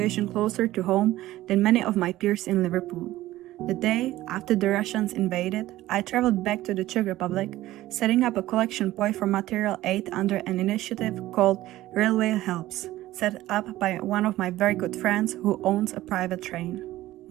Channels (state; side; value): quieter; left; 15.7 dB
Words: closer to home than many of my peers in Liverpool. The day after the Russians invaded, I traveled back to the Czech Republic, setting up a collection point for material aid under an initiative called Railway Helps, set up by one of my very good friends who owns a private train.